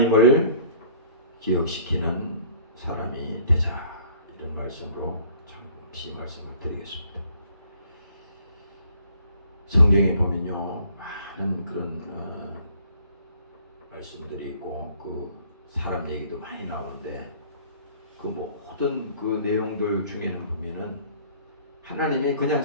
기억시키는 사람이 되자 이런 말씀으로 잠시 말씀을 드리겠습니다. 성경에 보면요 많은 그런 말씀들이 있고 그 사람 얘기도 많이 나오는데 그 모든 그 내용들 중에는 보면은 하나님이 그냥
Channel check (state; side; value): inverted; both; correlation -0.55